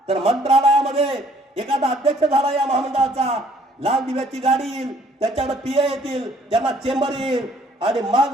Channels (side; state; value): both; normal; correlation 0.60